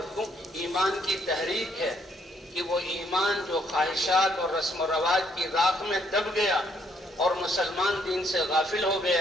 ایمان کی تحریک ہے کہ وہ ایمان جو خواہشات اور رسم و رواج کی راکھ میں دب گیا اور مسلمان دین سے غافل ہو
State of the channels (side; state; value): both; normal; correlation 0.69